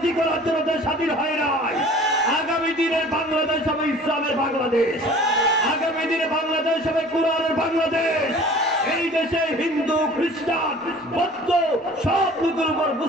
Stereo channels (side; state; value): both; normal; correlation 0.47